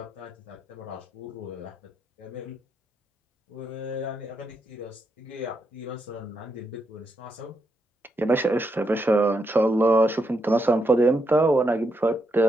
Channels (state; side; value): normal; both; correlation 0.81